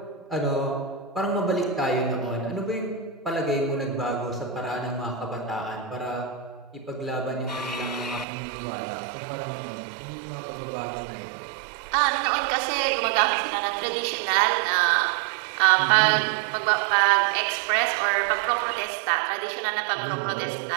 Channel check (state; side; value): drops out; left; at 8.2 s